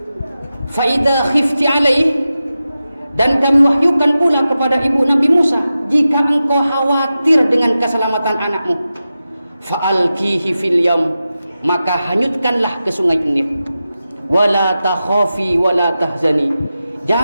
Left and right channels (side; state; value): both; inverted; correlation -0.92